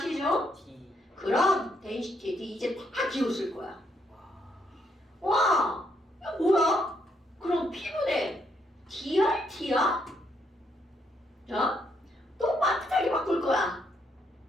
T. 그럼 density 이제 다 기호 쓸 거야. 와, 이거 뭐야? 그럼 P분의 DRT야? 자, 또 반듯하게 바꿀 거야.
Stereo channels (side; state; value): both; normal; correlation 0.74